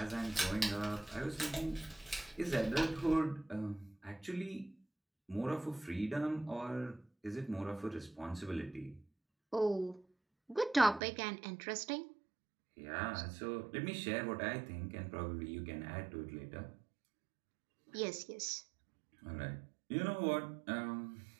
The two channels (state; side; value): drops out; left; at 11.0 s